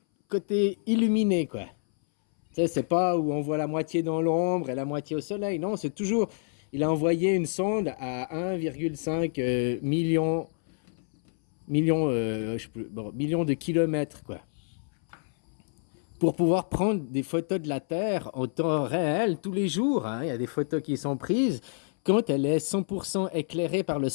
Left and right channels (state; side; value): silent; right; 59 dB below the other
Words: côté illuminé, quoi. Tu sais, c'est pas où on voit la moitié dans l'ombre et la moitié au soleil. Non, c'est toujours. Il a envoyé une sonde à 1,5 je sais plus, bon, millions de kilomètres, quoi. Pour pouvoir prendre des photos de la Terre en temps réel tous les jours, hein. Il y a des photos qui sont prises quand elle est 100% éclairée par le